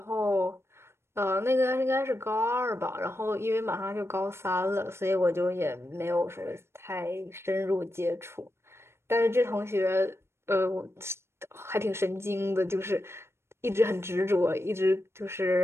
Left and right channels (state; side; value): late; left; 0.12 ms